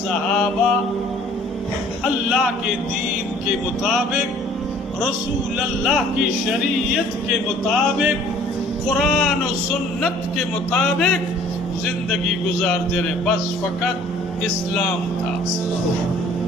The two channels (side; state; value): both; normal; correlation 0.54